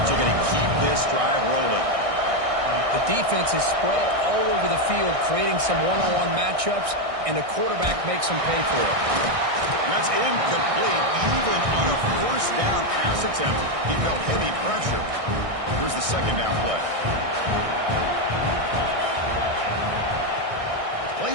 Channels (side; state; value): left; late; 1.6 ms